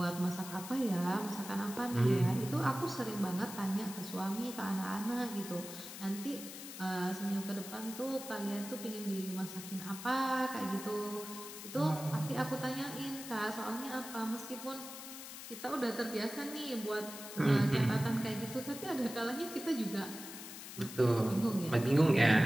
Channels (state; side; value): noise; left; hiss, 11 dB below the sound